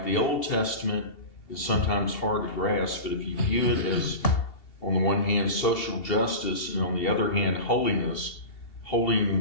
the Old Testament is sometimes hard to grasp, but if you view it as, on the one hand, social justice, and on the other hand, holiness,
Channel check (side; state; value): right; late; 2.7 ms